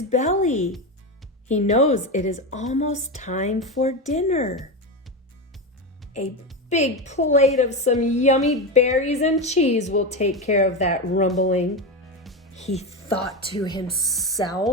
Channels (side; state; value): both; normal; correlation 0.16